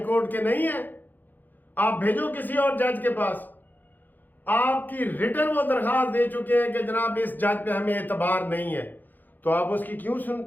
कोर्ट के नहीं है, आप भेजो किसी और जज के पास। आपकी रिटर्न वो दरखास्त दे चुके हैं कि जनाब इस जज पे हमें एतबार नहीं है, तो आप उसकी क्यों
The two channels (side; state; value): right; late; 0.087 ms